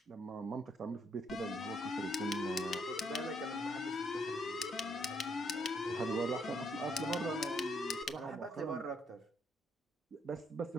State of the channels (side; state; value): both; normal; correlation 0.72